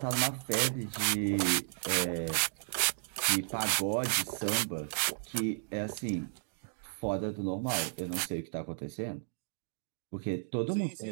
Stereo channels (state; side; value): silent; left; digital silence